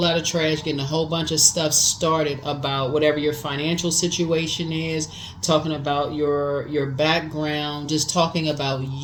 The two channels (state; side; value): identical; both; correlation 1.00